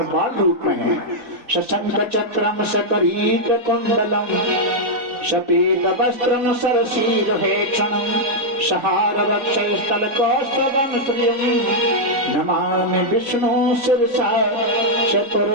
बाल रूप में है। शशंक चक्रम सकरीत कुंडलम, शपीत वस्त्रम सरसीर हेक्षणम, सहार वक्षस्थल कौस्तभम श्रियम, नमामि विष्णु शिरसा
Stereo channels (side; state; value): left; late; 3.3 ms